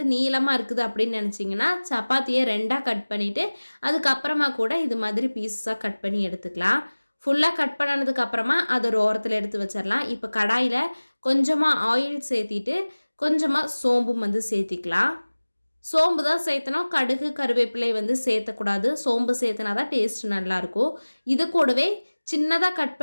நீளமாக இருக்குது அப்படின்னு நினச்சிங்கன்னா சப்பாத்தியை ரெண்டாக கட் பண்ணிவிட்டு அதுக்கப்புறமா கூட இது மாதிரி பீசஸாக கட் பண்ணி எடுத்துக்கலாம். ஃபுல்லாக கட் பண்ணதுக்கப்புறமா அதை ஒரு ஓரத்தில் எடுத்து வச்சிடலாம். இப்போ கடாயில் கொஞ்சமாக ஆயில் சேர்த்திட்டு கொஞ்சமாக சோம்பும் வந்து சேர்த்திக்கலாம். சோம்பு தான் சேர்த்தணும். கடுகு கருவேப்பிலை வந்து சேர்த்தக்கூடாது. சோம்பு சேர்த்தனா தான் டேஸ்ட் நல்லாயிருக்கும். இது கூடவே சின்னதாக கட்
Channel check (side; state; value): both; inverted; correlation -1.00